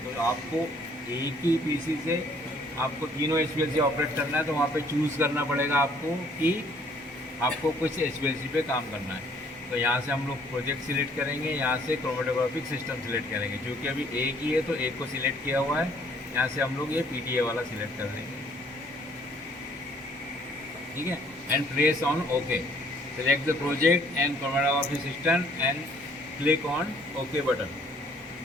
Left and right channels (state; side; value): normal; both; correlation 0.61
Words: तो आपको एक ही पीसी से आपको तीनों HPLC ऑपरेट करना है, तो वहाँ पे चूज़ करना पड़ेगा आपको कि आपको कुछ HPLC पे काम करना है। तो यहाँ से हम लोग प्रोजेक्ट सिलेक्ट करेंगे, यहाँ से क्रोमेटोग्राफिक सिस्टम सिलेक्ट करेंगे। क्योंकि अभी एक ही है तो एक को सिलेक्ट किया हुआ है, यहाँ से हम लोग ये पीडीए वाला सिलेक्ट कर देंगे, ठीक है। And press on okay. Select the project and chromatographic system and click on okay button.